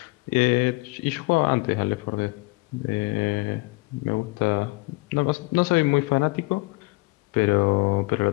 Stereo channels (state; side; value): quieter; right; 23.8 dB